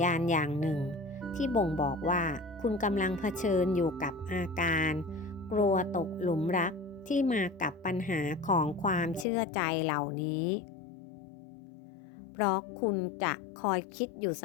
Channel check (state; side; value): drops out; right; at 9.2 s